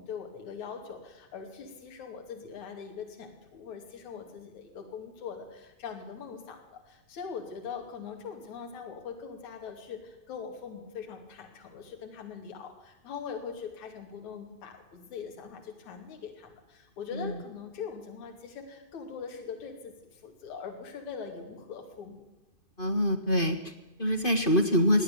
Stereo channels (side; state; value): right; late; 2.5 ms